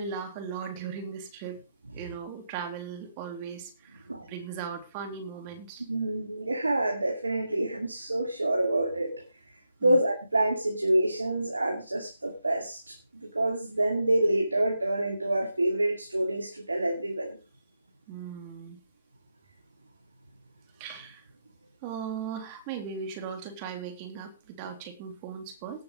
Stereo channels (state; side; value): inverted; both; correlation -0.86